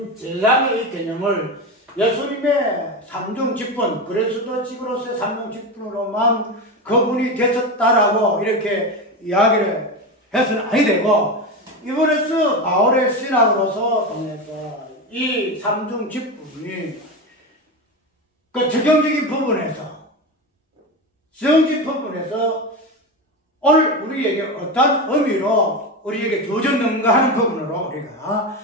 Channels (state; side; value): normal; both; correlation 0.19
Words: 제사장의 개념을 예수님의 삼중 직분, 그리스도 직으로서의 삼중 직분으로만 그분이 되셨다라고 이렇게 이야기를 해서는 아니 되고, 이번에서 바울의 신학으로서 통해서 이 삼중 직분이 그 적용적인 부분에서, 적용적인 부분에서 오늘 우리에게 어떤 의미로 우리에게 주어졌는가 하는 부분으로 우리가